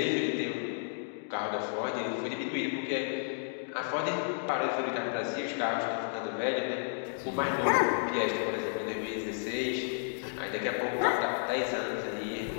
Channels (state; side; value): silent; right; digital silence